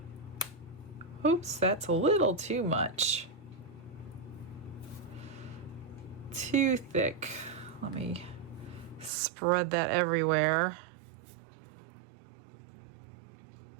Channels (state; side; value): drops out; left; at 9.1 s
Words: Oops, that's a little too much. Too thick. Let me spread that everywhere.